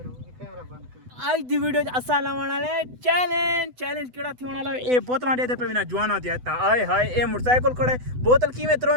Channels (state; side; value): late; left; 8.0 ms